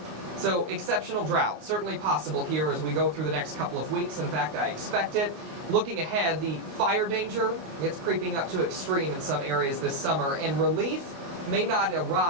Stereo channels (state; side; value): late; left; 29 ms